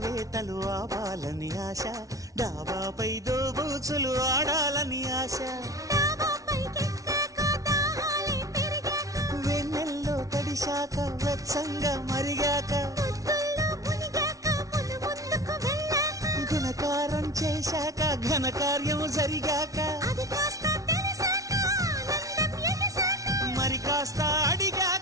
ఆవాలని ఆశ, డాబాపై దోబూచులు ఆడాలని ఆశ, వెన్నెల్లో తడిశాక వెచ్చంగా మరిగాక, గుణకారం చేశాక ఘనకార్యం జరిగాక, మరి కాస్త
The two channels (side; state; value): left; late; 0.17 ms